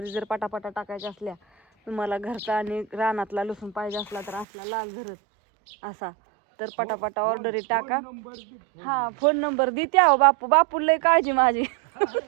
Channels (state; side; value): drops out; left; at 4.5 s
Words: जर पटापटा टाकायच्या असल्या, तुम्हाला घरचा आणि रानातला लसूण पाहिजे असला तर असला लाल झरत असा, तर पटापटा ऑर्डरी टाका. हा फोन नंबर देते अहो बापू. बापू लय काळजी माझी.